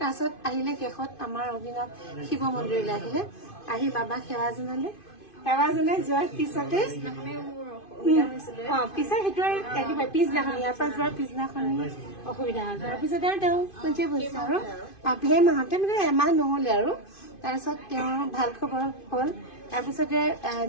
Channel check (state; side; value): late; right; 2.5 ms